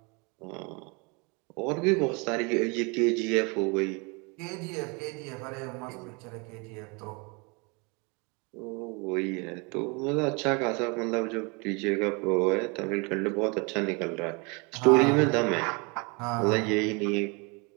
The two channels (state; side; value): quieter; left; 30.4 dB